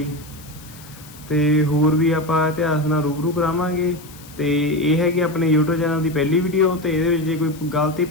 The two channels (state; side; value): noise; left; hiss, 20 dB below the sound